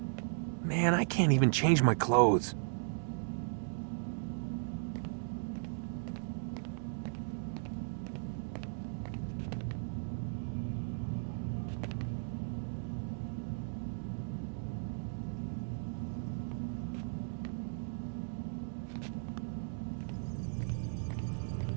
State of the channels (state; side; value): silent; left; digital silence